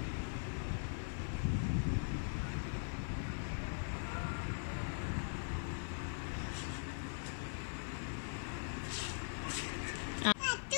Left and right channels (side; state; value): right; silent; digital silence